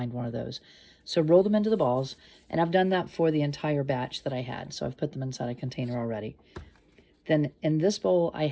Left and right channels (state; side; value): identical; both; correlation 1.00